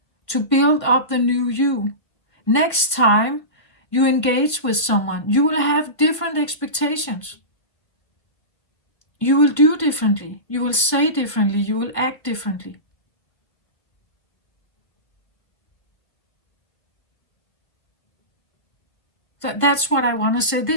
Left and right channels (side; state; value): right; late; 1.5 ms